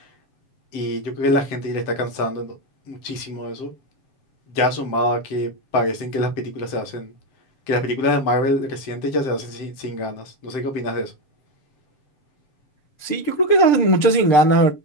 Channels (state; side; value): late; right; 7.7 ms